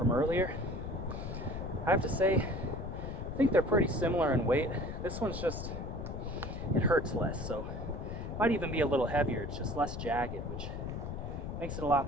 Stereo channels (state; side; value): noise; left; rumble, 6 dB below the sound